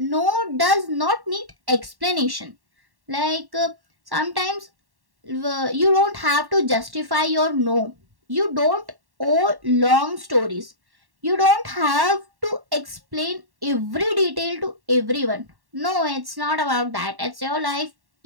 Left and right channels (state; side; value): late; left; 1.1 ms